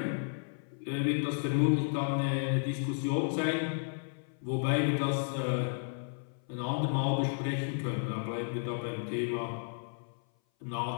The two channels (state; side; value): silent; right; 56 dB below the other